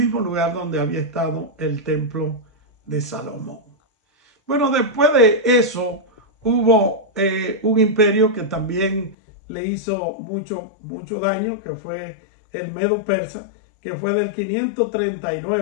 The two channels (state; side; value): drops out; right; at 9.2 s